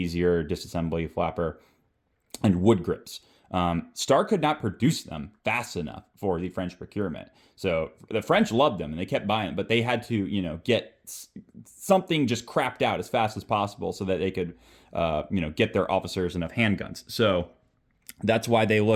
disassembly flapper, and wood grips. Star could not produce them fast enough for the French procurement. So the French loved them and they kept buying them, but they had to, get something just crapped out as fast as possible so that they could, get their officers enough handguns. So that's why they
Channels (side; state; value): both; identical; correlation 1.00